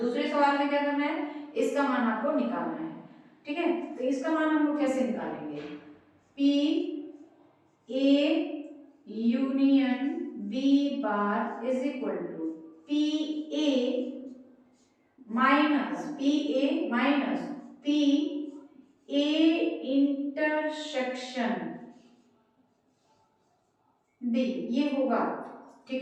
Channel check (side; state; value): both; identical; correlation 1.00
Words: सवाल में क्या करना है, इसका मान आपको निकालना है, ठीक है। तो इसका मान हम लोग कैसे निकालेंगे, P A union B bar is equal to P A minus P A intersection B, ये होगा, ठीक